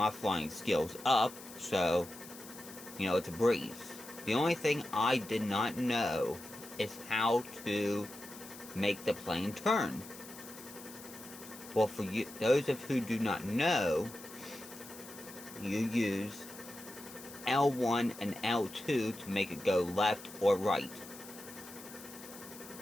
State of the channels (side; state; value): left; noise; hiss, 16 dB below the sound